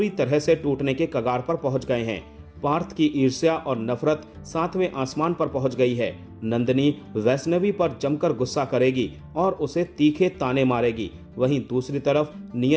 तरह से टूटने के कगार पर पहुंच गए हैं। पार्थ की ईर्ष्या और नफरत 7वें आसमान पर पहुंच गई है। नंदिनी वैष्णवी पर जमकर गुस्सा करेगी और उसे तीखे ताने मारेगी। वहीं दूसरी तरफ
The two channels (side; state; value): both; identical; correlation 1.00